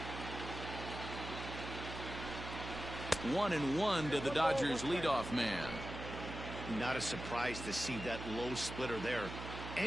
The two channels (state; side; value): noise; right; hum, 8 dB below the sound